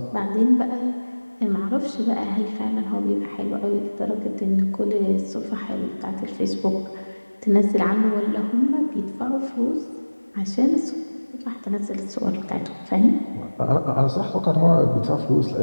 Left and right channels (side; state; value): both; inverted; correlation -1.00